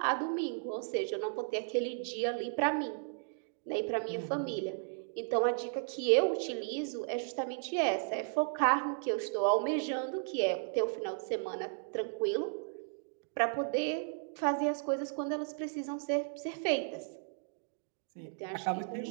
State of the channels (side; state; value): left; silent; digital silence